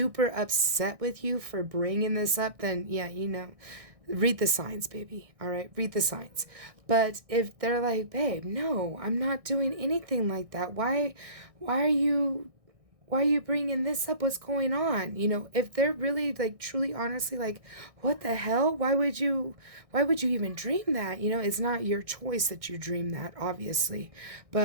upset with you for bringing this up, then yeah, read the signs, baby. All right, read the signs. But if they're like, babe, no, I'm not doing anything like that. Why are you bringing this up? What's going on? If they're really like truly honestly like, what the hell? Why would you even dream that? It's not your choice that you dream that, obviously.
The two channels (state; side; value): late; left; 1.6 ms